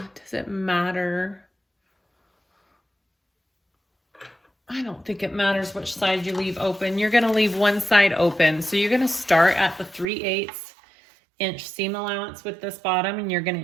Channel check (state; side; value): drops out; left; at 10.1 s